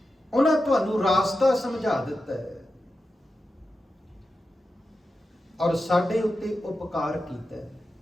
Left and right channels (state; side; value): normal; both; correlation 0.91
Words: ਉਹਨਾਂ ਤੁਹਾਨੂੰ ਰਾਸਤਾ ਸਮਝਾ ਦਿੱਤਾ ਹੈ ਔਰ ਸਾਡੇ ਉੱਤੇ ਉਪਕਾਰ ਕੀਤਾ ਹੈ।